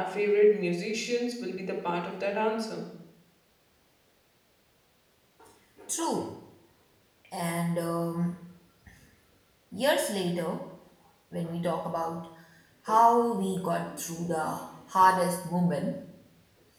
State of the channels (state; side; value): identical; both; correlation 1.00